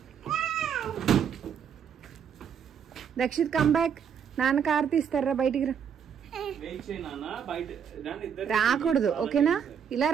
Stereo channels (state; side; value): quieter; left; 7.7 dB